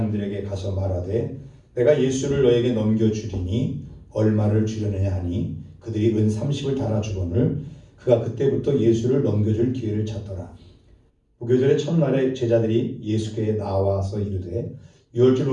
가서 말하되 내가 예수를 너에게 넘겨주리니 얼마를 주려느냐 하니 그들이 은 30을 달아주거늘 그가 그때부터 예수를 넘겨줄 기회를 찾더라. 무교절의 첫날에 제자들이 예수께 나와서 이르되 유월절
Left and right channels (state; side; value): identical; both; correlation 1.00